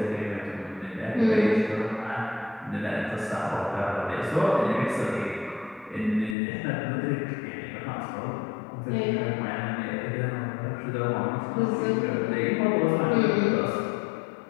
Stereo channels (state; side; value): drops out; right; at 6.4 s